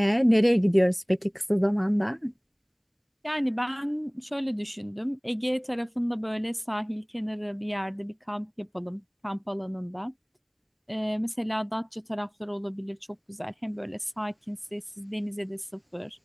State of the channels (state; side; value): identical; both; correlation 1.00